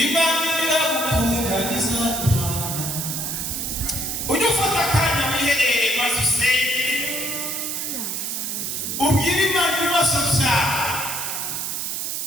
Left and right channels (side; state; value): right; noise; hiss, 3 dB below the sound